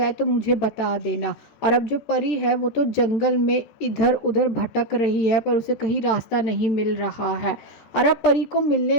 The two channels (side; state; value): right; late; 14 ms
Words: तो मुझे बता देना। और अब जो परी है वो तो जंगल में इधर उधर भटक रही है पर उसे कहीं रास्ता नहीं मिल रहा है। और अब परी को